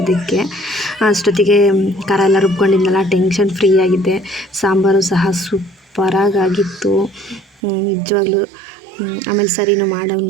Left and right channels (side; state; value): left; drops out; at 7.6 s